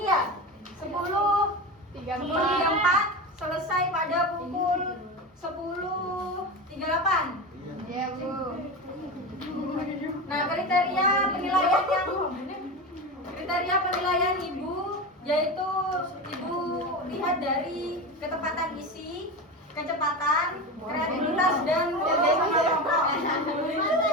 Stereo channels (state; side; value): normal; both; correlation 0.24